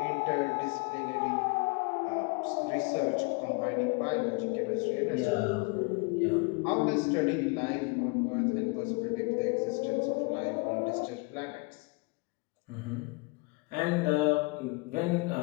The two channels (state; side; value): quieter; right; 28.8 dB